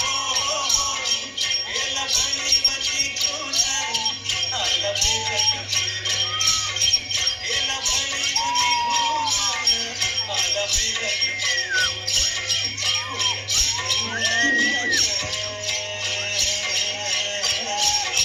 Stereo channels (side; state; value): both; identical; correlation 1.00